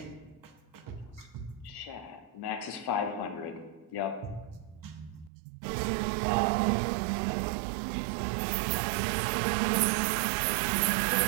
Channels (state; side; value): drops out; left; at 5.3 s